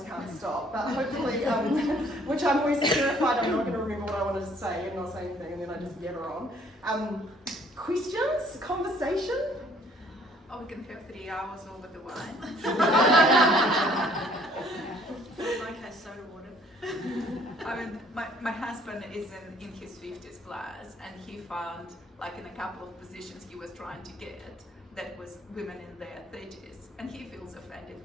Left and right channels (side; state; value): both; normal; correlation 0.60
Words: can't stop. But hopefully, which I'm always terrified I'm not going to remember what I wanted to say and not say anything, and then I just yabber on. Questions? Conversation? Oh, we can have 3 hours over the wine. Like has soda water. I mean, my husband is in his 50s plus, and he found, like in a couple of positions he was trying to get, that was women in their 30s, and he feels offended